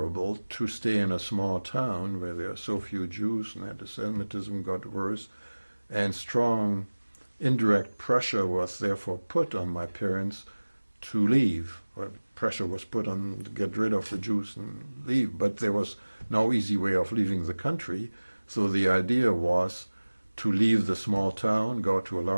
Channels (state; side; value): inverted; both; correlation -1.00